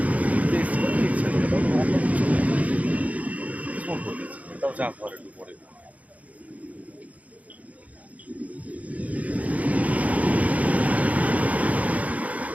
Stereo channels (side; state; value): left; late; 0.070 ms